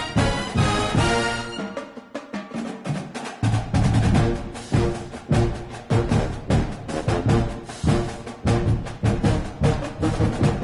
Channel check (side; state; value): both; identical; correlation 1.00